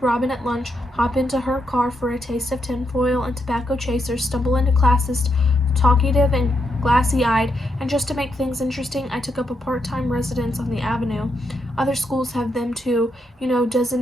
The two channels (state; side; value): normal; both; correlation 0.81